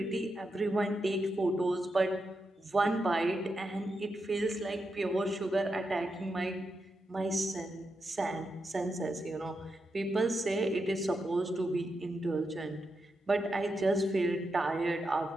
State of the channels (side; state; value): both; normal; correlation 0.86